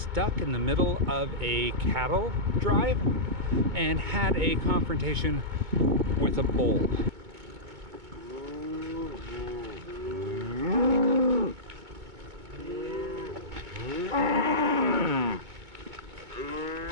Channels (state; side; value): late; left; 2.2 ms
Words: in the middle of a cattle drive and had a confrontation with a bull.